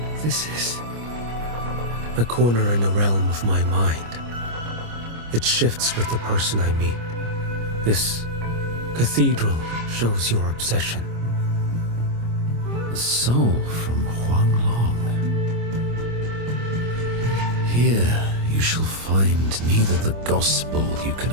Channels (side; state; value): left; late; 25 ms